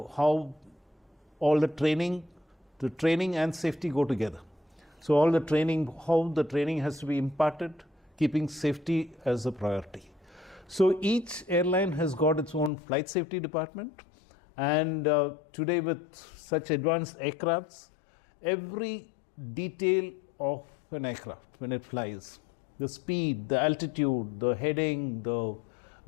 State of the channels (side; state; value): right; drops out; at 12.7 s